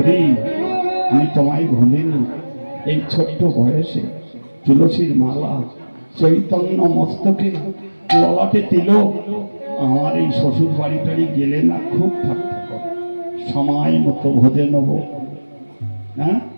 আমি তোমায় ভুলিনি, এই ছোট্ট বয়সে তুলসীর মালা, চৈতন্য মস্তকে, ললাটে তিলক, আমার এই শ্বশুর বাড়ি টাড়ি গেলে না খুব ঠাট্টা করে, সময় মতো ভোজে নেব। হ্যাঁ,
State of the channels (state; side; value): inverted; both; correlation -1.00